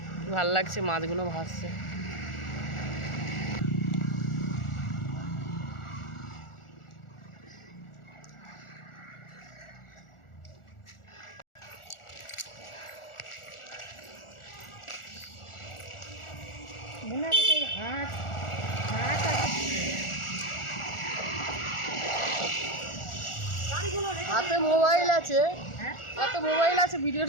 ভাল লাগছে মাছগুলো ভাসছে। মনে হয় সেই হাঁস হাঁস হাতে মোবাইল আছে, হাতে মোবাইল আছে,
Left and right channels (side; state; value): right; late; 1.4 ms